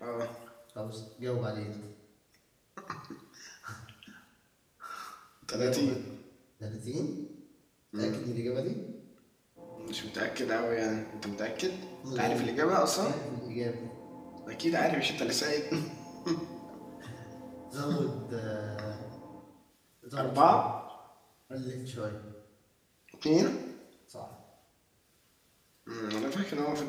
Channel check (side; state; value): both; identical; correlation 1.00